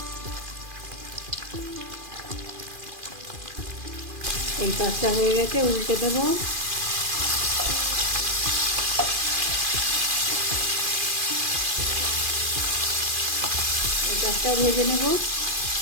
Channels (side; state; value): left; late; 2.4 ms